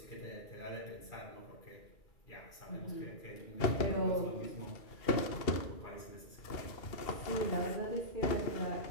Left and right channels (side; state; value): right; late; 2.7 ms